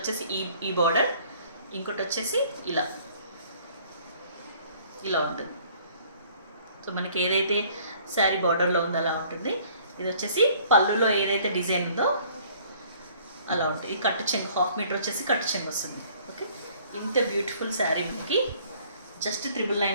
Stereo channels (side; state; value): both; inverted; correlation -0.57